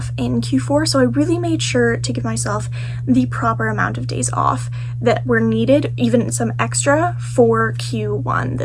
in Q4, so I really made sure to give myself the proper amount of days off that were needed, even some extra, for Q1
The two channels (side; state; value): both; identical; correlation 1.00